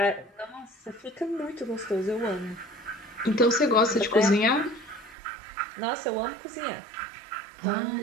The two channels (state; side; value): drops out; left; at 5.2 s